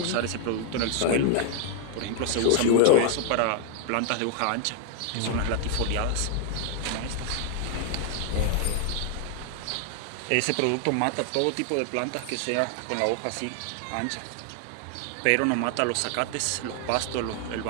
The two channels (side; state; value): both; different; correlation 0.00